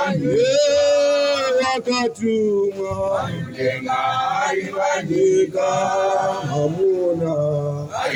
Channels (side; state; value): both; identical; correlation 1.00